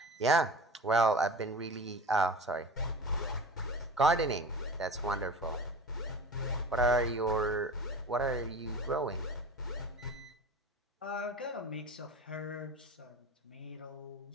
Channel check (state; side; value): normal; both; correlation 0.35